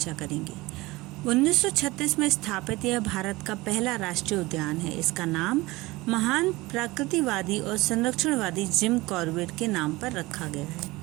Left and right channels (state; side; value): quieter; left; 20.9 dB